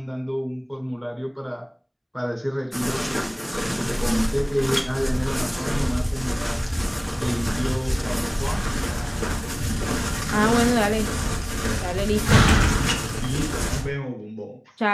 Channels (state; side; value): identical; both; correlation 1.00